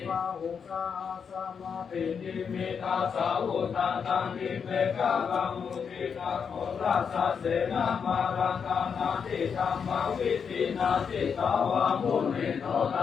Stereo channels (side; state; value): right; quieter; 6.6 dB